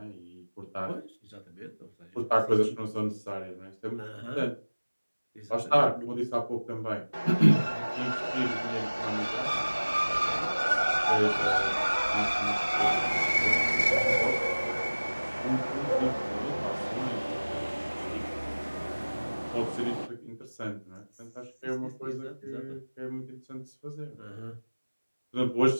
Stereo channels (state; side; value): inverted; both; correlation -1.00